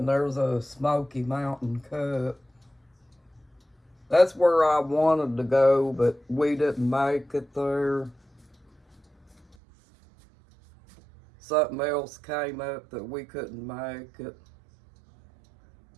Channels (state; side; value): drops out; left; at 9.6 s